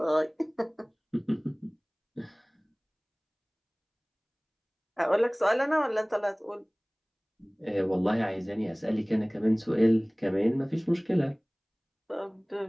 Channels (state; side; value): identical; both; correlation 1.00